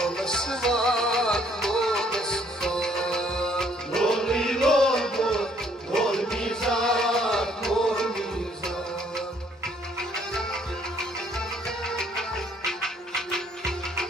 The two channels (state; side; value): normal; both; correlation 0.64